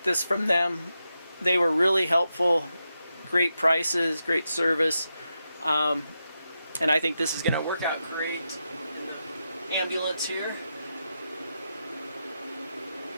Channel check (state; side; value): inverted; both; correlation -0.87